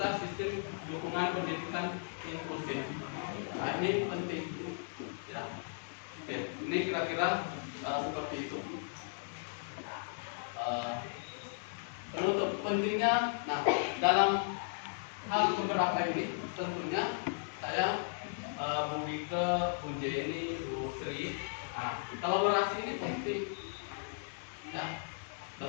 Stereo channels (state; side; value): silent; right; digital silence